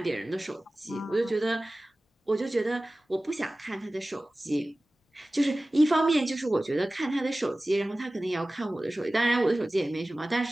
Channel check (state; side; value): normal; both; correlation 0.97